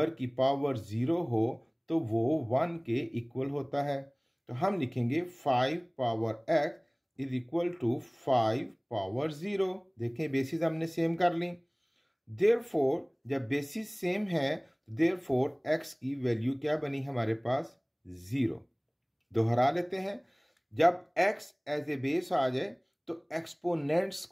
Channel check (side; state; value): both; identical; correlation 1.00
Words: की पावर 0 हो तो वो 1 के इक्वल होता है। तो हम लिखेंगे 5 power x is equal to 5 power 0। देखें बेसिस हमने सेम कर ली। देयरफॉर जब बेसिस सेम है, देयरफॉर x की वैल्यू क्या बनी हमारे पास? 0। दोहरा लेते हैं, जब x एज ए बेस आ जाए तो एक्सपोनेंट्स